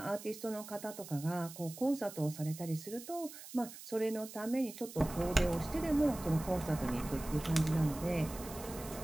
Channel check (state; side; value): noise; right; hiss, 14 dB below the sound